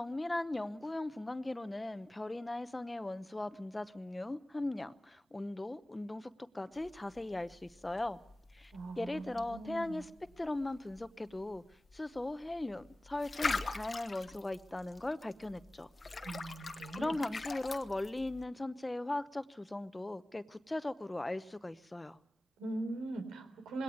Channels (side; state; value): both; normal; correlation 0.97